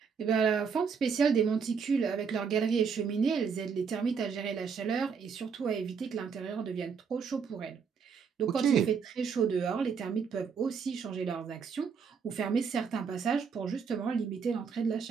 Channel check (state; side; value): quieter; left; 6.1 dB